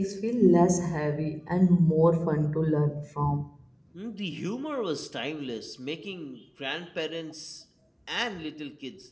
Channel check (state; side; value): identical; both; correlation 1.00